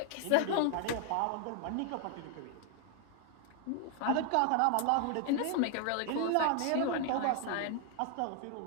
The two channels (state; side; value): different; both; correlation 0.00